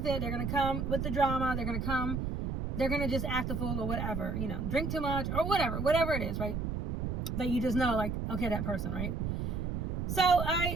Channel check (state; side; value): noise; right; rumble, 2 dB below the sound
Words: it. They're going to come with the drama. They're going to just act a fool or whatever, drink too much or whatever it is, right? That you just know, okay, that person, right? So